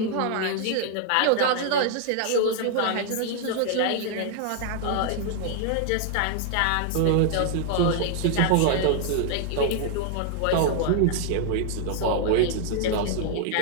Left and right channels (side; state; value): both; different; correlation 0.00